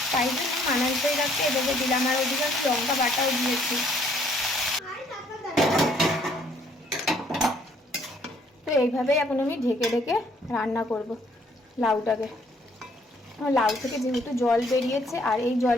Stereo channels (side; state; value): both; normal; correlation 0.64